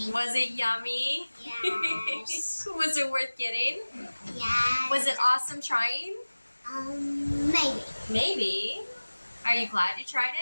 Was it yummy? Yes. Was it worth getting? Yes. Was it awesome trying? Maybe. Maybe. Are you glad you tried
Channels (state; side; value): inverted; both; correlation -1.00